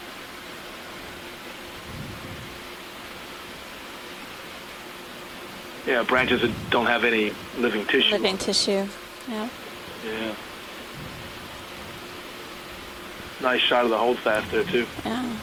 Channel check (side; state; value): both; identical; correlation 1.00